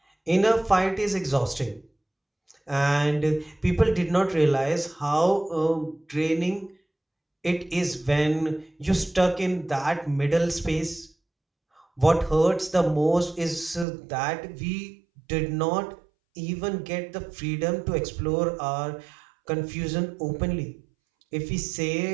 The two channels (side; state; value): left; drops out; at 13.9 s